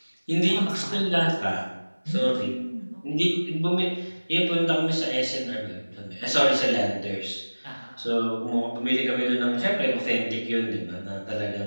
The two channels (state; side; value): inverted; both; correlation -1.00